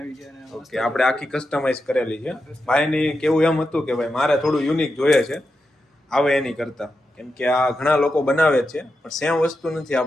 છે અને ઓકે, આપણે આખી કસ્ટમાઇઝ કરેલી છે. ભાઈની કેવું એમ હતું કે ભાઈ મારે થોડું યુનિક જોઈએ છે આવે એની કરતા, કેમ કે આ ઘણા લોકો બનાવે જ છે પણ સેમ વસ્તુ નથી,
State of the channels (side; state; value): both; normal; correlation 0.88